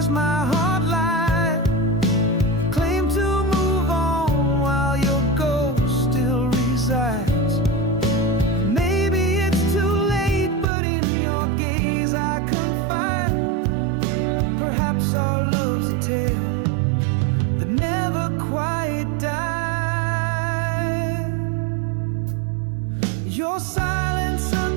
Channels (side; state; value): left; drops out; at 10.7 s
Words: my heart lied? Claim to move on while your ghost still resides. Maybe it's too late, but in your gaze I confide. Perhaps our love's a tale that never quite died. Your silence a